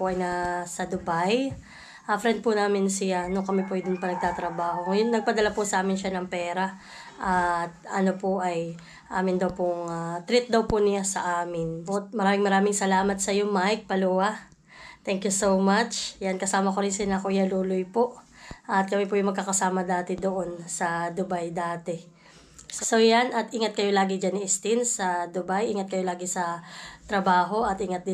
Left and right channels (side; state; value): both; identical; correlation 1.00